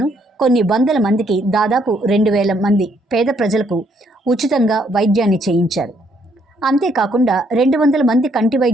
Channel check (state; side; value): normal; both; correlation 0.70